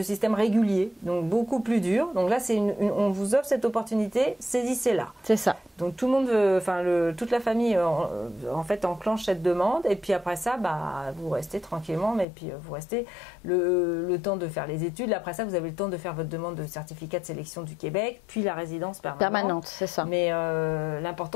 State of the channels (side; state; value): right; drops out; at 12.2 s